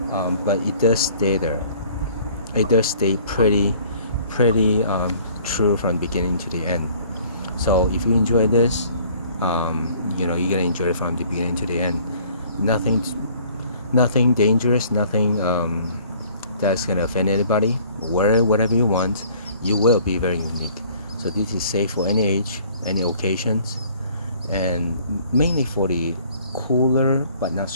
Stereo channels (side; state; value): both; inverted; correlation -0.55